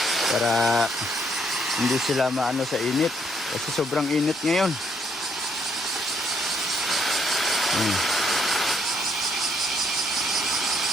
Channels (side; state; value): both; normal; correlation 0.70